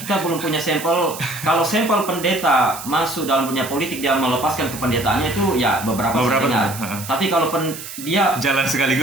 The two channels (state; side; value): noise; right; hiss, 11 dB below the sound